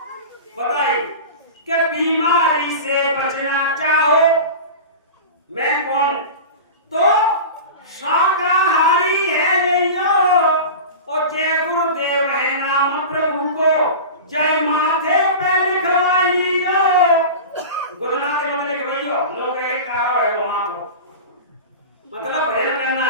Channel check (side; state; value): both; inverted; correlation -0.31